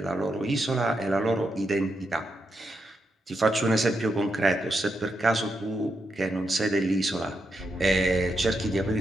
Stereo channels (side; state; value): both; normal; correlation 0.83